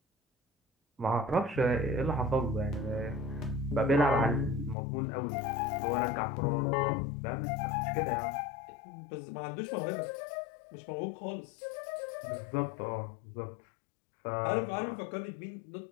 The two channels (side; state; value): right; drops out; at 4.8 s